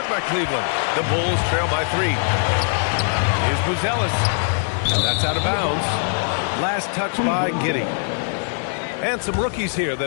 by Cleveland. The Bulls trail by 3. Here's Buzelis. And that's out of bounds. Last touch by Giddey. And some rookies here that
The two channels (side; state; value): right; silent; 65 dB below the other